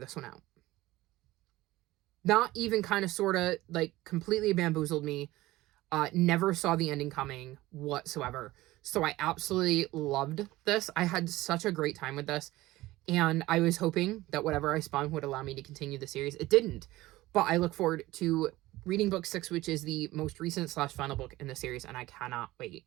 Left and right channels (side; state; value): left; quieter; 17.9 dB